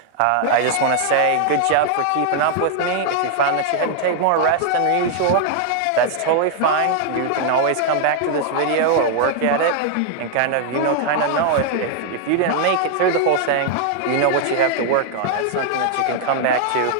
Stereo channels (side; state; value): both; different; correlation 0.00